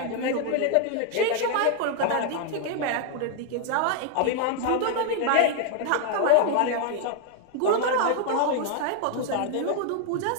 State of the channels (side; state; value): both; different; correlation 0.00